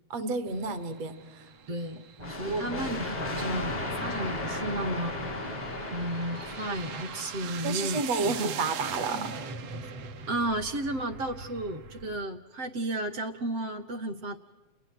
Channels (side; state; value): left; late; 7.6 ms